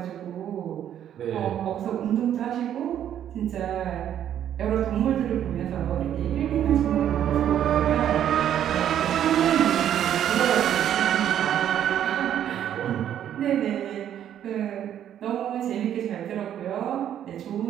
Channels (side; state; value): left; quieter; 10.3 dB